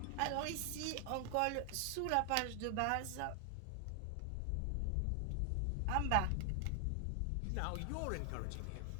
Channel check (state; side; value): different; both; correlation 0.00